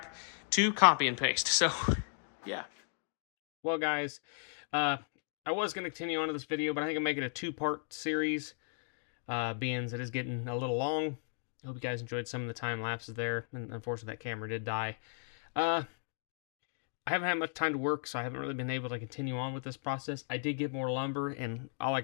to copy and paste. So yeah. Well, guys, I was going to continue on to this video, but I think I'm making a 2-part series, being it is getting a little long. I hope you guys enjoyed some of the time lapses there, and unfortunately that camera did die. I haven't had much time to work, so I haven't really been able to continue on with this process. I did get more lumber, and all I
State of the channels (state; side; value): silent; right; digital silence